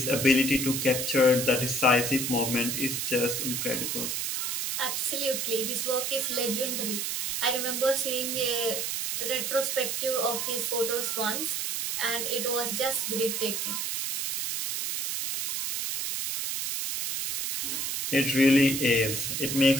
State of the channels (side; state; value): right; noise; hiss, 1 dB below the sound